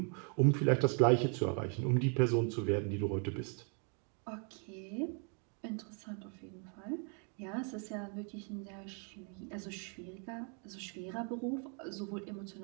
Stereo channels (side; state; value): left; quieter; 39.4 dB